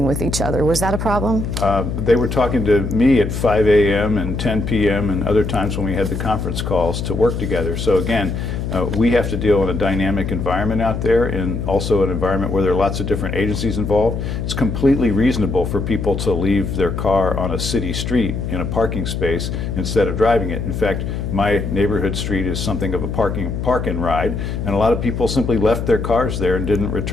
with each other. Was that a problem? They were talking to me at 5 a.m. and 10 p.m. and other times when we had the conference calls to work together. So again, we have to deal in a dynamic environment out there, and also an environment where there are lots of different agencies involved. It's completely reasonable for people to leave their car on a city street in a parking space instead of driving it. In fact, my neighborhood street is something of a park and ride, and a lot of people simply left their cars there and didn't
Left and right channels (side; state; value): left; noise; hum, 3 dB below the sound